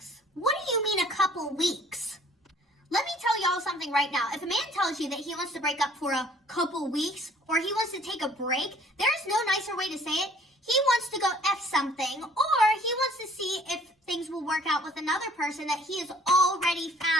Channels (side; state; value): both; normal; correlation 0.56